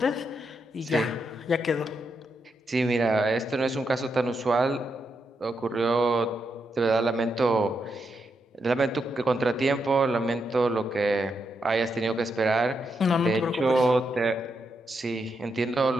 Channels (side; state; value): both; normal; correlation 0.82